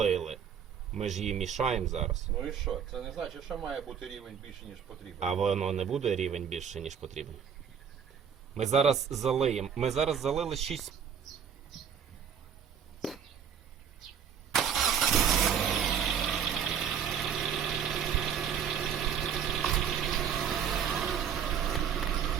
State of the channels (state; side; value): quieter; left; 7.8 dB